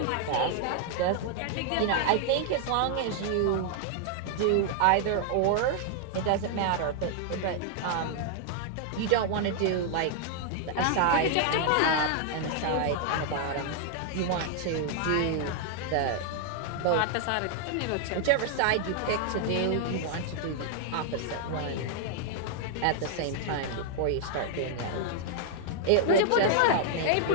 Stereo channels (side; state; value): both; different; correlation 0.00